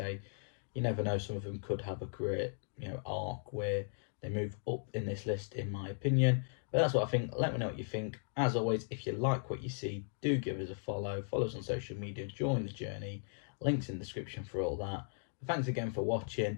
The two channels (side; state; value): right; silent; digital silence